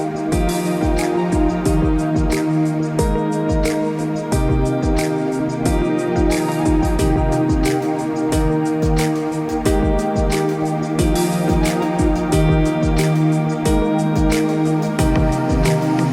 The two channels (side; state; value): both; identical; correlation 1.00